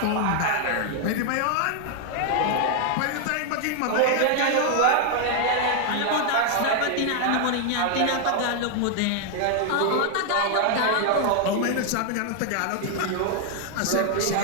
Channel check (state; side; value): different; both; correlation 0.00